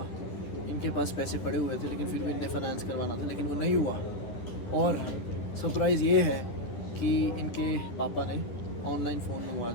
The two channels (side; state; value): right; late; 10 ms